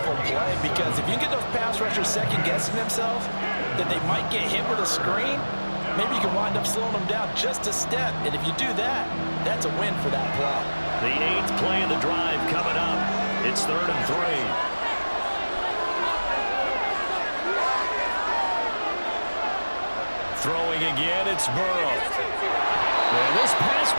play, because if you get those pass rushers second-guessing themselves, then they might get hit with a screen. Maybe you can wind up slowing them down just a step. And if you do that, that's a win for that play. The 8th play of the drive coming up. It's 3rd and 3. Throwing again, it's Burrow. And this pass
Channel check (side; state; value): both; inverted; correlation -1.00